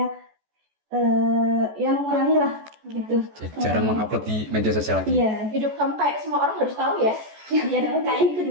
ya mengurangi lah gitu. Jarang mengupload di media sosial lagi. Iya, Hidup kamu kayak semua orang harus tahu ya. ya dong, kayak itu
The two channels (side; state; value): left; late; 14 ms